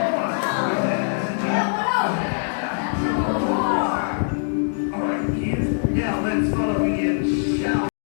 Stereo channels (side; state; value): right; silent; digital silence